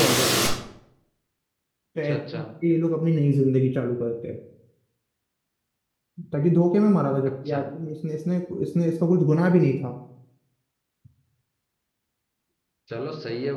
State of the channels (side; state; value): both; identical; correlation 1.00